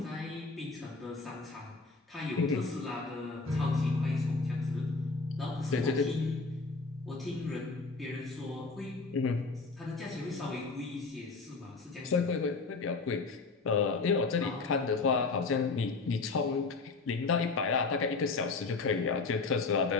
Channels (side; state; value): right; quieter; 4.1 dB